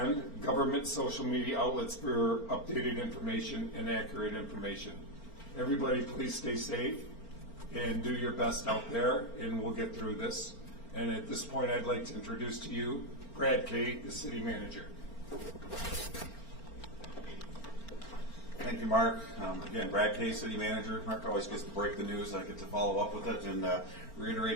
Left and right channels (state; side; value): late; right; 4.4 ms